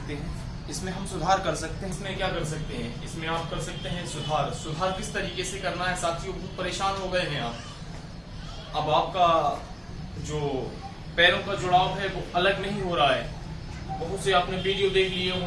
हैं? इसमें हम सुधार कर सकते हैं। इसमें क्या कर सकते हैं? इसमें आप कर सकते हैं सुधार किस तरीके से करना है साथियों? बहुत परेशान हो गए हैं आप। अब आपका जो पैरों का जुड़ाव है वो अलग नहीं हो रहा है। बहुत से आपने वीडियो देख लिए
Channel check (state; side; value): identical; both; correlation 1.00